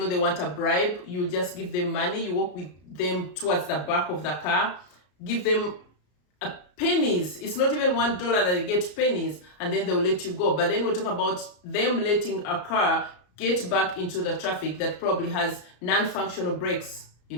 they want a bribe, you just give them money, you walk with them towards the back of the car, give them pennies. It's not even $1 that they get, pennies, and then they will let you go. But then we're talking about them letting a car get back into the traffic that probably has non-functional brakes, you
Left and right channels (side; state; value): right; late; 33 ms